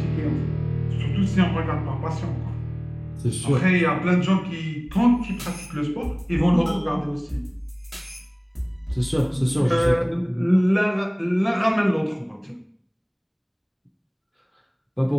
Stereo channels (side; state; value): both; identical; correlation 1.00